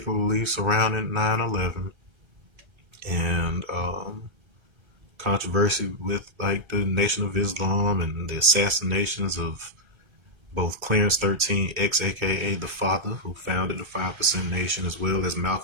surrounding 9/11, and controversy with like the Nation of Islam and the assassinations of both Clarence 13 X, aka the father who founded the 5% Nation, as well as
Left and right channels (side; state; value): left; late; 1.3 ms